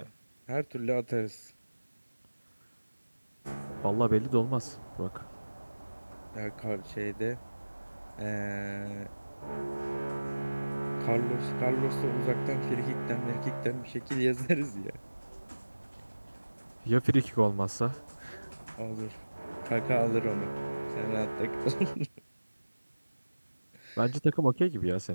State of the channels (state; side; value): inverted; both; correlation -1.00